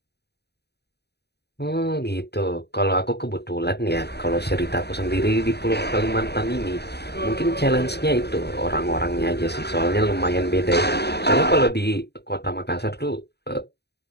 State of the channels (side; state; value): right; late; 0.48 ms